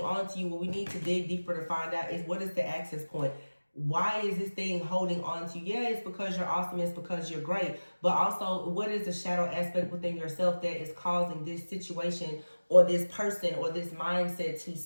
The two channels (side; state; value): both; inverted; correlation -1.00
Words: to you, what we need to dig deeper to find out is, what is the access point? Why is this thing holding on to you? Yeah, it's because you're awesome. It's because you're great. But also, what is the shadow aspect within yourself that is causing this situation or this person or this mindset to